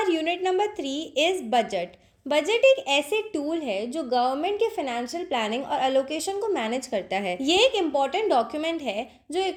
unit number 3 is budget. Budget एक ऐसे टूल है जो गवर्नमेंट के फाइनेंशियल प्लानिंग और एलोकेशन को मैनेज करता है। ये एक इम्पॉर्टेंट डॉक्यूमेंट है जो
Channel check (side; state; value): both; identical; correlation 1.00